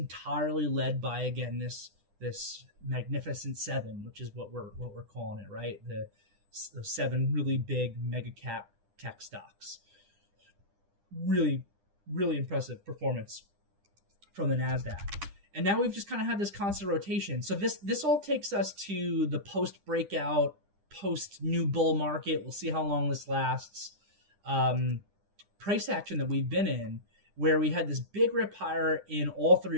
led by, again, this Magnificent Seven, which is what we're calling it, right? The 7 really big mega cap tech stocks. Really, really impressive performance from the NASDAQ. And now we've just kind of had this constant rotation. So this all takes us to the post-breakout, post-new bull market. We'll see how long this lasts. Price action that we've been in, where we had this big rip higher in all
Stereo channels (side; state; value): left; late; 9.9 ms